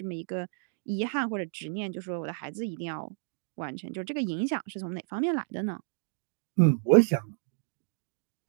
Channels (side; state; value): left; silent; digital silence